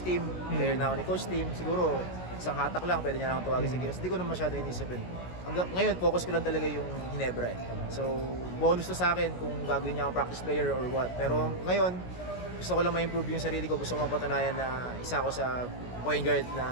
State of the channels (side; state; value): right; late; 16 ms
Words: Tim, player na ako ni Coach Tim, siguro isang hatak lang, pwede niya lang tawagin sa Gilas. Hindi ko naman masyadong inisip yun. Ngayon, focus ko lang talaga yung Ginebra eh. So, bonus to sa akin kung gagawin niya akong practice player or what. Pero ngayon, gusto ko lang ma-improve yung sarili ko. Gusto ko mapatunayan na isa ako sa point guard